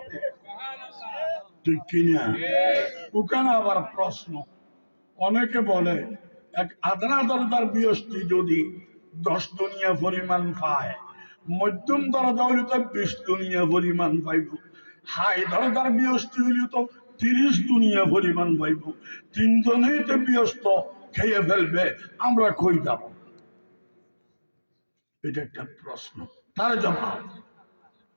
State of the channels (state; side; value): inverted; both; correlation -1.00